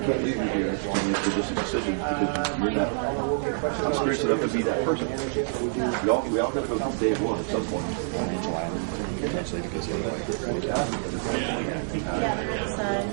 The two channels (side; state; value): left; silent; digital silence